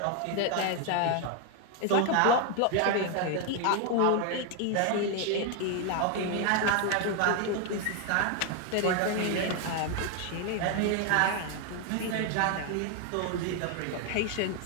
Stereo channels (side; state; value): both; different; correlation 0.01